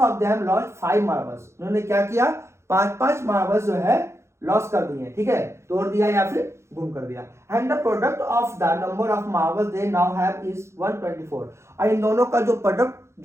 them lost 5 marbles. उन्होंने क्या किया, 5-5 मार्बल्स जो है लॉस कर दिए, ठीक है, तोड़ दिया या फिर गुम कर दिया। And the product of the number of marbles they now have is 124। और इन दोनों का जो प्रोडक्ट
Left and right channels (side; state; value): left; late; 0.13 ms